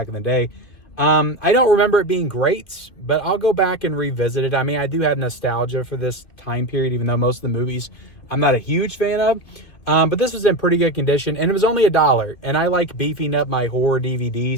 in the day. I don't remember it being great, but I'll go back and revisit it. I mean, I do have nostalgia for this time period, even though most of the movies I'm not a huge fan of. But this was in pretty good condition, and it was only $1. And I like beefing up my horror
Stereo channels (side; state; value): right; late; 2.6 ms